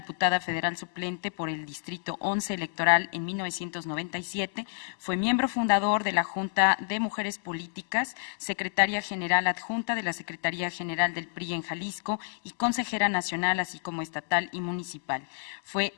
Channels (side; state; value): right; silent; digital silence